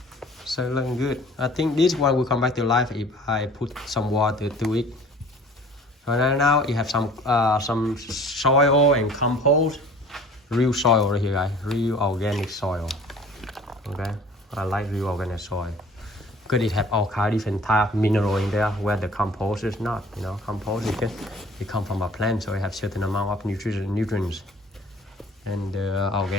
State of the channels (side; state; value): both; normal; correlation 0.49